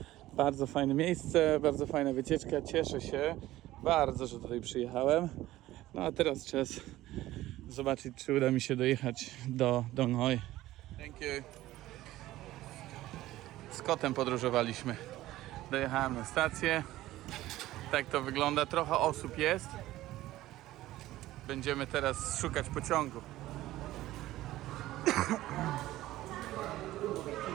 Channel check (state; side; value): quieter; left; 15.8 dB